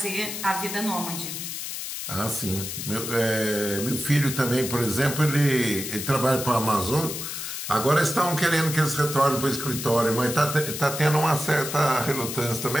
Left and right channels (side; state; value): left; noise; hiss, 6 dB below the sound